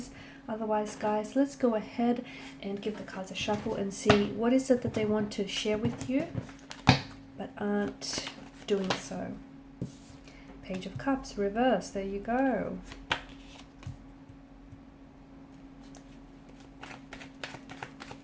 Otherwise, guys, let's go ahead and give the cards a shuffle and see what is it that they want to share with you but aren't doing so. Page of Cups, reverse, there you go.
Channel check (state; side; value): identical; both; correlation 1.00